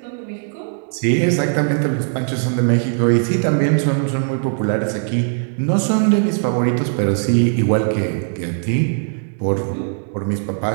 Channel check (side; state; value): left; silent; digital silence